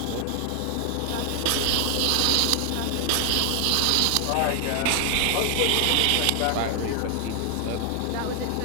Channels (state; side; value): different; both; correlation 0.00